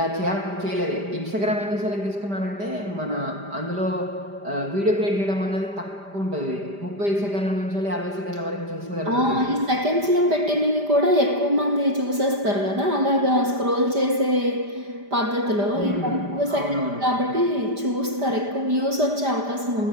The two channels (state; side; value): late; left; 5.0 ms